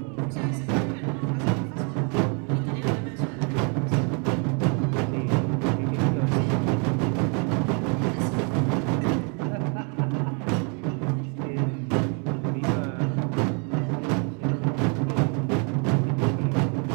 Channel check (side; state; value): left; quieter; 36.0 dB